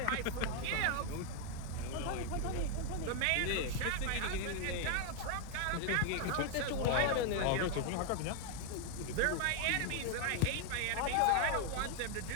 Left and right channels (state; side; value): different; both; correlation 0.00